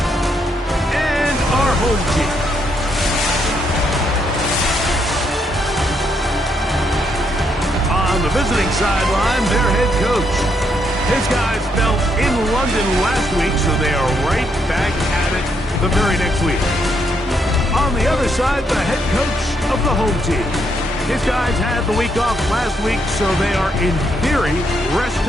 and our home team. On the visiting sideline, their head coach. His guys fell in London last week, so they are right back at it the very next week. On the other side, the head coach of the home team. His guys had the week off last week, so they are, in theory,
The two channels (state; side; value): normal; both; correlation 0.76